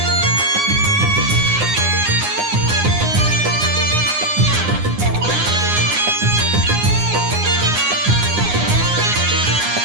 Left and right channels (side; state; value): left; late; 9.7 ms